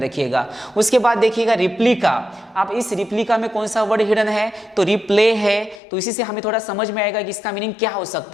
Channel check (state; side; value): drops out; right; at 5.8 s